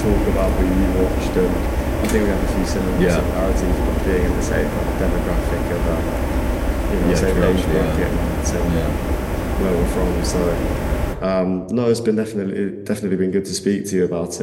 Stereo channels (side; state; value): both; identical; correlation 1.00